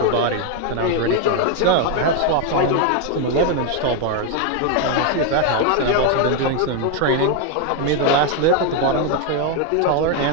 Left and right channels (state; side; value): different; both; correlation 0.01